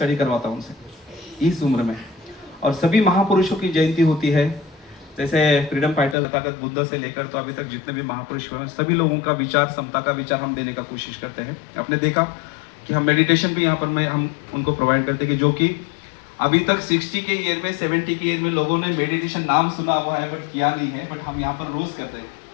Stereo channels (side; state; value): right; drops out; at 6.2 s